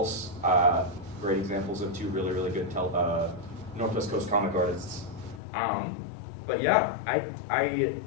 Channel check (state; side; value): drops out; right; at 5.4 s